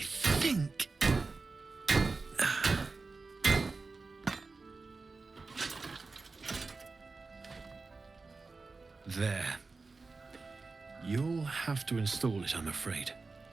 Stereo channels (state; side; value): quieter; left; 3.9 dB